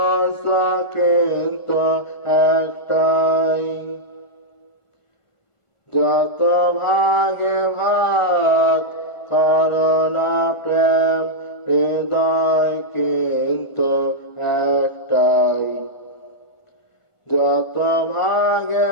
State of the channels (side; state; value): right; late; 1.4 ms